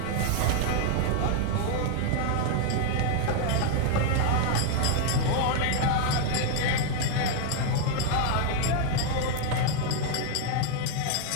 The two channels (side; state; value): both; different; correlation 0.00